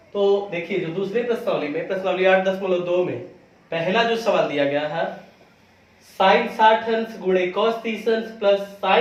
तो देखिए, जो दूसरे प्रश्नावली में प्रश्नावली 8.2 में पहला जो सवाल दिया गया है, साइन 60 अंश गुणे कॉस 30 अंश प्लस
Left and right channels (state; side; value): identical; both; correlation 1.00